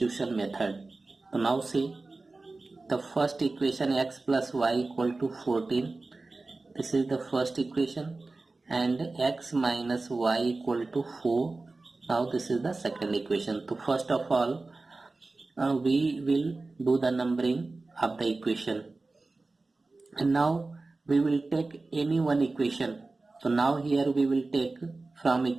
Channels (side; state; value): left; quieter; 3.4 dB